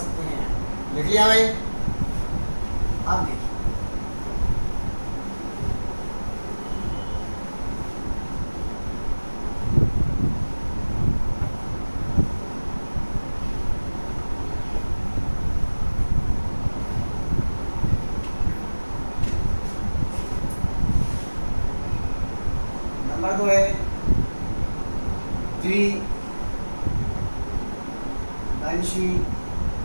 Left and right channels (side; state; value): both; inverted; correlation -1.00